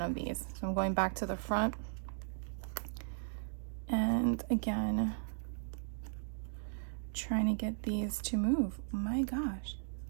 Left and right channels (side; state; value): left; silent; digital silence